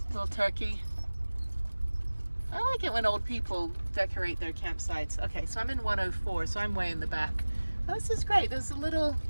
Little turkey. I like it when old people decorate their campsites. Okay, so I'm in 104, so I'm way in the back. Oh, this is great. There's a little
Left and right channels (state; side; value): inverted; both; correlation -1.00